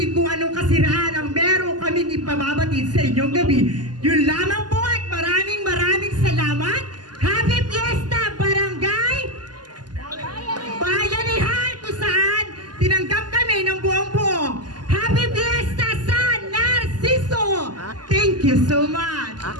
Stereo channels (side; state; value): left; late; 0.70 ms